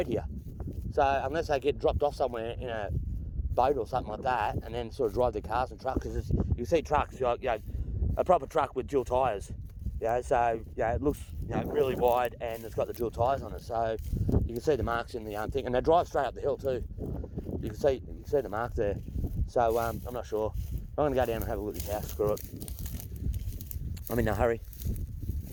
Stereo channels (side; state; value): both; identical; correlation 1.00